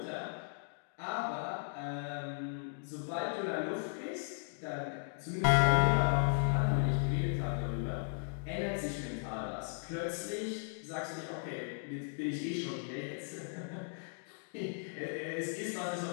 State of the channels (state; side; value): silent; right; digital silence